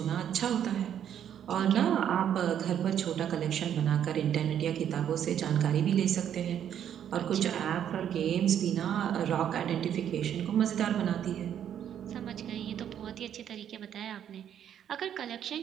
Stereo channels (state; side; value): quieter; left; 9.6 dB